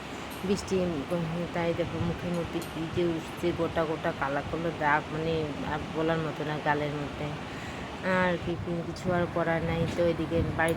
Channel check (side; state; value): both; identical; correlation 1.00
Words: তাই দেখো মুখের মধ্যে কী যে উঠছে, গোটা গোটা কালা কালো দাগ, মানে আর বলার মতো না গালের মধ্যে। আর কিছু আর করার নাই। তো এদিকে